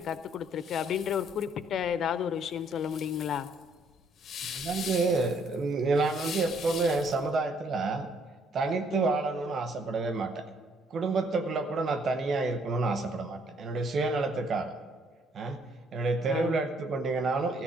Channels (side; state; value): both; normal; correlation 0.66